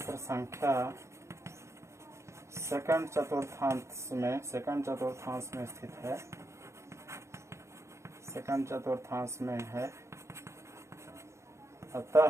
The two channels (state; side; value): late; left; 0.14 ms